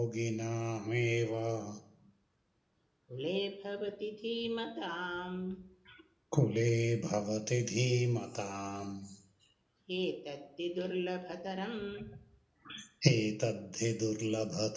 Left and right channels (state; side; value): identical; both; correlation 1.00